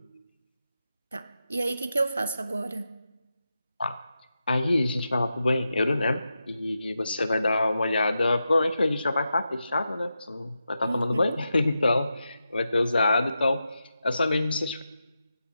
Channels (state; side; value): inverted; both; correlation -0.89